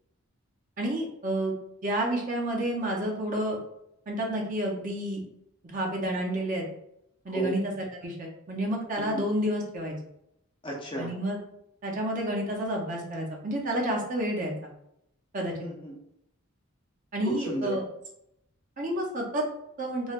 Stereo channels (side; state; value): both; normal; correlation 0.40